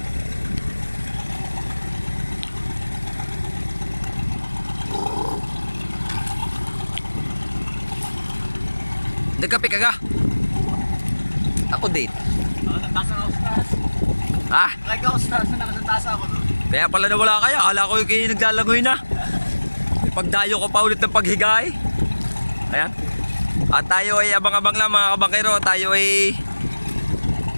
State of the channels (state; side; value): inverted; both; correlation -1.00